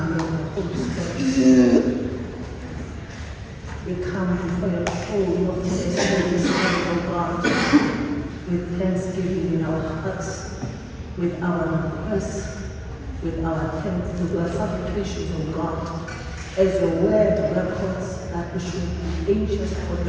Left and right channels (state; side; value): identical; both; correlation 1.00